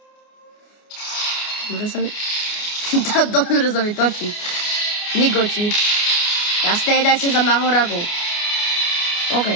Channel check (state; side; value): late; right; 29 ms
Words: Dobre sa mi točí. Nigoči. Jasné, dajte za Mahoragu. OK,